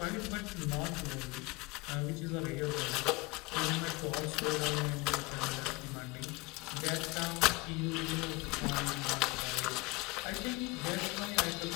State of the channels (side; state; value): right; quieter; 24.7 dB